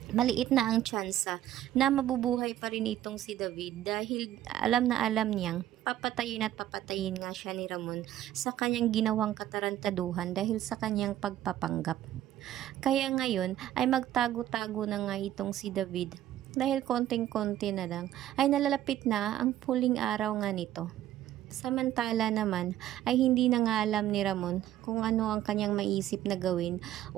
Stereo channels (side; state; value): left; quieter; 12.8 dB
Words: maliit na ang tsansa na mabubuhay pa rin itong si David dahil alam na alam niyang papatayin at papatayin nga siya ni Ramon sa kanyang ginawang katarantaduhan dahil sa kanyang pagpapanggap. Kaya ngayon ay magtago-tago na nga itong si David dahil konting-konti na lang ay nalalapit na ang huling araw nga nito. Samantala naman ay hindi na nga alam ni Ramon kung ano ang kanyang maisip na gawin